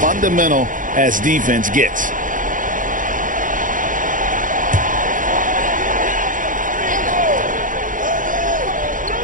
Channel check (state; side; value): late; left; 0.38 ms